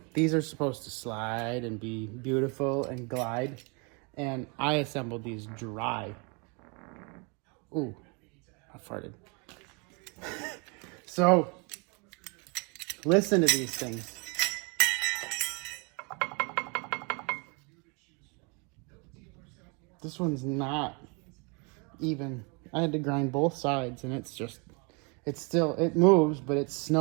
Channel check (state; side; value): quieter; left; 32.6 dB